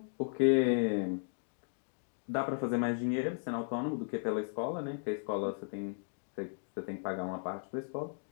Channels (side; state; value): right; silent; digital silence